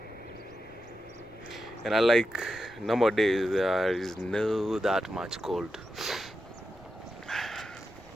and unlike normal days, there is no that much cold.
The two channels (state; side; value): noise; right; rumble, 26 dB below the sound